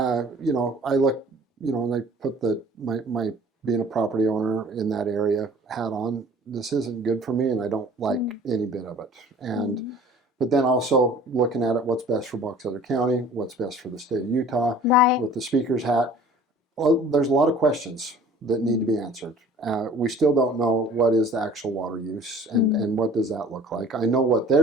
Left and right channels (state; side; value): normal; both; correlation 0.48